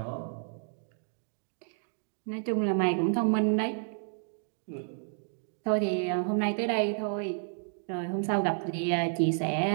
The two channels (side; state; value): left; silent; digital silence